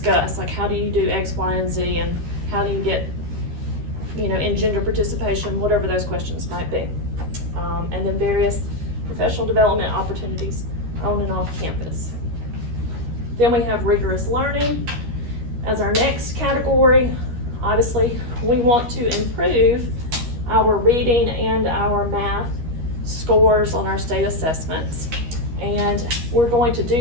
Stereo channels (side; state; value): left; late; 13 ms